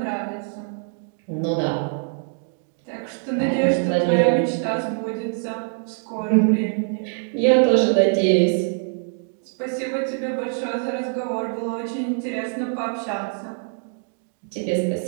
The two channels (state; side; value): silent; left; 57 dB below the other